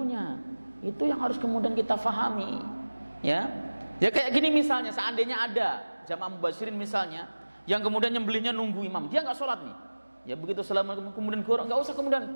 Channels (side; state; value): both; inverted; correlation -1.00